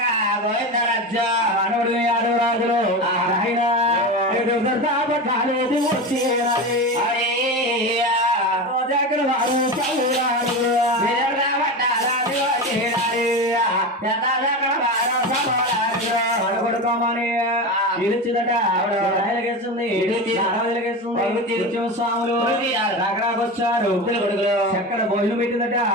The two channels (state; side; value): normal; both; correlation 0.23